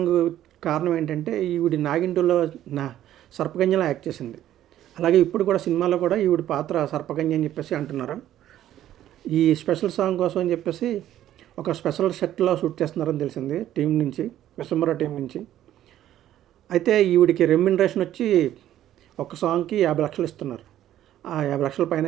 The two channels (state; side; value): quieter; left; 12.3 dB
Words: కారణం ఏంటంటే ఈవిడి నాగిన్ 2లో సర్పకన్యలా యాక్ట్ చేసింది. అలాగే ఇప్పుడు కూడా సినిమాలో కూడా ఈవిడి పాత్ర సర్పకన్య అని చెప్పేసి అంటున్నారు. ఈ స్పెషల్ సాంగ్ కోసం అని చెప్పేసి ఒక స్పెషల్ సెట్లో షూట్ చేస్తున్నారని తెలిసింది టీం నుంచి, విశ్వంబర టీం నుంచి. అయితే ఈవిడికి రెమ్యునరేషన్ వచ్చి ఒక సాంగ్కి 50 లక్షలు ఇస్తున్నారు. ఆ 50 లక్షల పైన